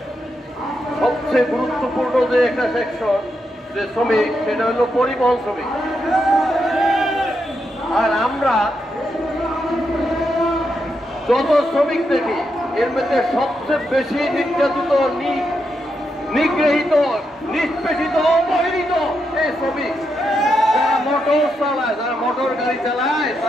সবচেয়ে গুরুত্বপূর্ণ যে একটা সেকশন যে শ্রমিক, সেটা হলো পরিবহন শ্রমিক। আর আমরা যত শ্রমিক দেখি এর মধ্যে সবচেয়ে বেশি নির্যাতিত, নিগৃহীত, নিষ্পেষিত, অবহেলিত এই শ্রমিক। যারা মোটর চালায়, যারা মোটর গাড়ি চালায়,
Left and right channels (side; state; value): both; normal; correlation 0.83